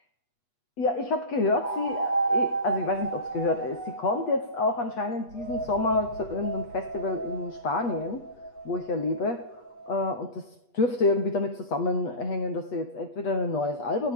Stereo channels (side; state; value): right; late; 8.3 ms